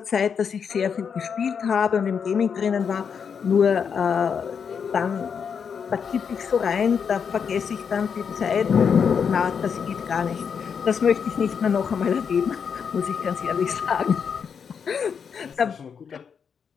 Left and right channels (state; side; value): quieter; right; 6.7 dB